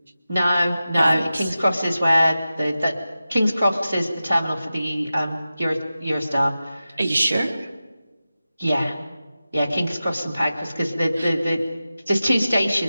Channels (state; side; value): inverted; both; correlation -0.94